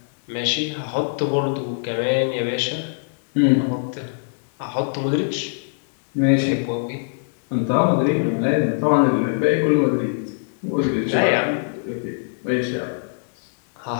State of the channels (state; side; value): silent; right; digital silence